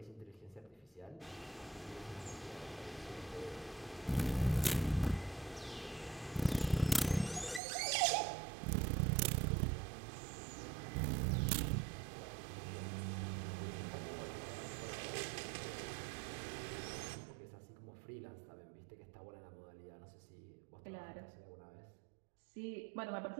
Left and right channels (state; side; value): drops out; left; at 7.6 s